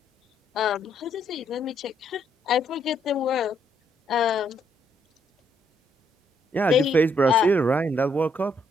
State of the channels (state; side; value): normal; both; correlation 0.72